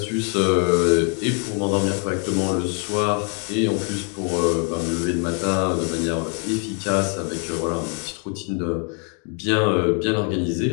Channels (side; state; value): right; quieter; 39.4 dB